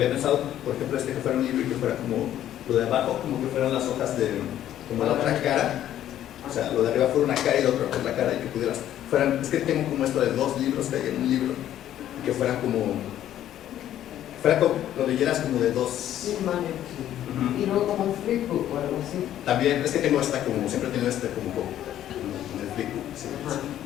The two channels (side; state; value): right; quieter; 11.8 dB